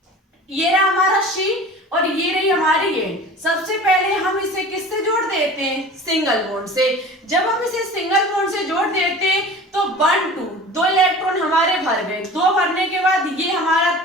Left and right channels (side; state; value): both; normal; correlation 0.39